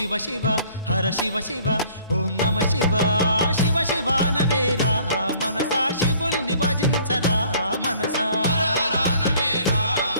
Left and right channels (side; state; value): both; inverted; correlation -0.56